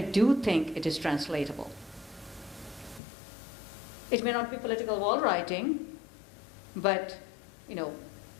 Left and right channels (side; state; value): right; drops out; at 3.0 s